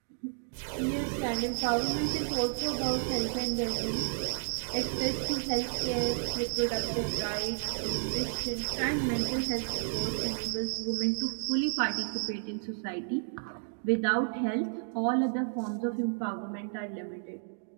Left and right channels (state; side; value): silent; left; digital silence